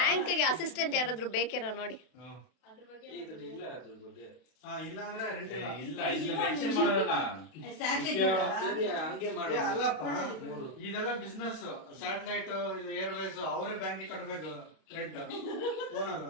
ಅಸಿಸ್ಟೆಂಟ್ ಯಾರಾದ್ರೂ ಬೇಕೇನೋ ನೋಡಿ. ಇದ್ರಲ್ಲಿ ಇಲ್ಲ ಅದ್ರ ಬಗ್ಗೆ. ಇಲ್ಲ ಅಂದ್ರೆ ರೆಂಟ್ ಇಲ್ಲ. ಇಲ್ಲ ಇಲ್ಲಿ ಮೆನ್ಷನ್ ಮಾಡೋಲ್ಲ. ಸರಿ ಹಂಗೆ ಮಾಡು. ಅಲ್ಲಪ್ಪ, ಇದೆಲ್ಲ ಬಿಸ್ನೆಸ್. ಸ್ಯಾಟಲೈಟ್, ಏರ್ವೇಸ್ ಅವರೇ ಬ್ಯಾಂಕಿಗೆ ಕಟ್ಟಬೇಕು. ಓನರ್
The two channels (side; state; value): right; late; 32 ms